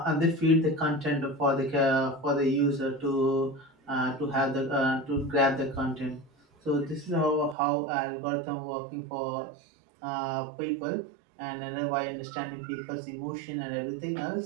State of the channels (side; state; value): left; drops out; at 7.6 s